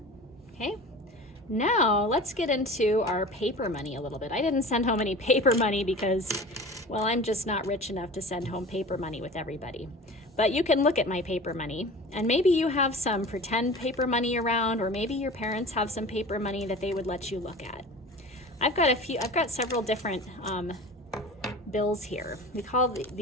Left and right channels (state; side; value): normal; both; correlation 0.37